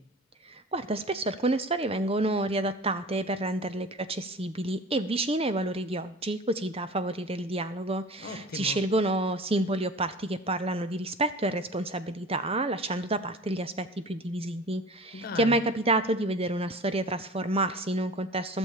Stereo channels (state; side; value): normal; both; correlation 0.39